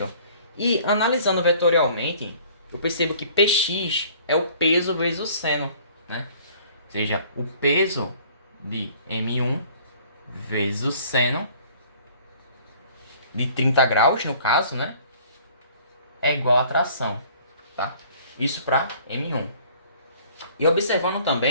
E analisando vetorialmente, eu percebo que Px é o peso vezes o seno, né? Ou seja, o peso de M1 vezes o seno de 30 graus, no caso, né? É igual a tração, tá? Isso para M1. E observando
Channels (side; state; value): both; inverted; correlation -0.53